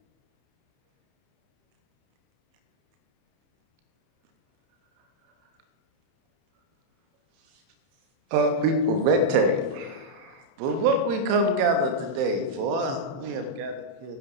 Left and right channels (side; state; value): left; late; 31 ms